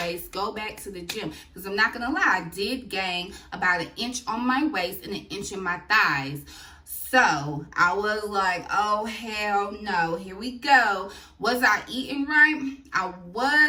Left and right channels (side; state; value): both; identical; correlation 1.00